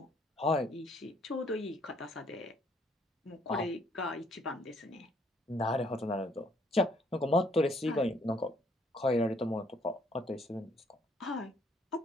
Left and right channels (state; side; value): normal; both; correlation 0.65